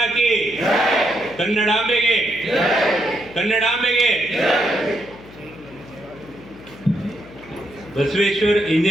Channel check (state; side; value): noise; left; hum, 20 dB below the sound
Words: की ಕನ್ನಡಾಂಬೆಗೆ ಕನ್ನಡಾಂಬೆಗೆ ಬಸವೇಶ್ವರ